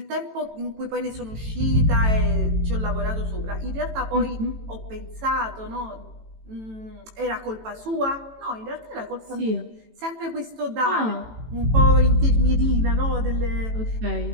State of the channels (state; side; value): late; left; 18 ms